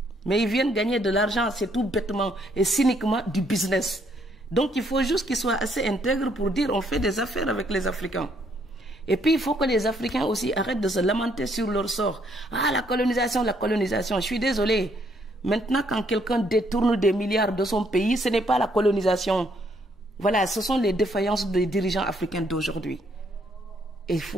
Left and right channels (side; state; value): both; normal; correlation 0.70